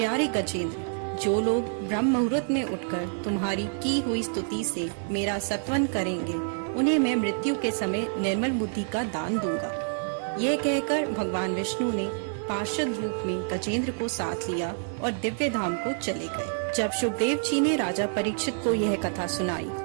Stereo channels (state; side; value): silent; left; 60 dB below the other